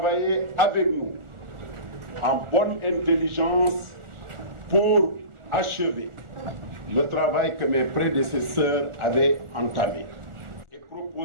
avec nous en bonne intelligence pour achever le travail que mes prédécesseurs avaient entamé et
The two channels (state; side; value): late; left; 1.4 ms